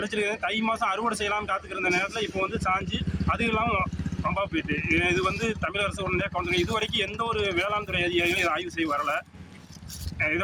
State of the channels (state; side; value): identical; both; correlation 1.00